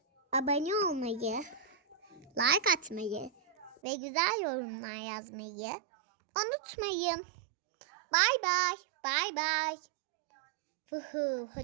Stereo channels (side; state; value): left; drops out; at 3.8 s